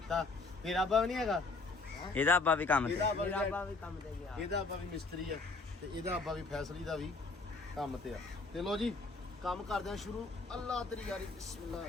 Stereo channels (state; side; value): quieter; right; 3.6 dB